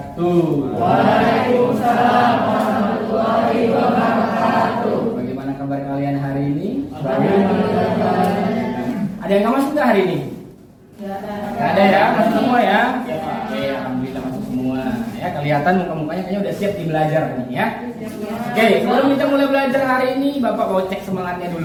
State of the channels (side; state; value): both; identical; correlation 1.00